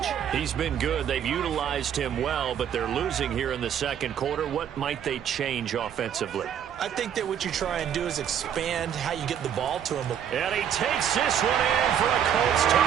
He's been good. They've utilized him well, but they're losing here in the 2nd quarter. What might they change offensively? I think that what you try and do is expand how you get the ball to him. And he takes this one in for a Colts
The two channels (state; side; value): quieter; left; 9.1 dB